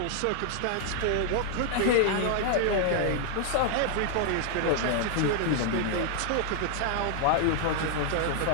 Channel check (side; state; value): both; different; correlation 0.00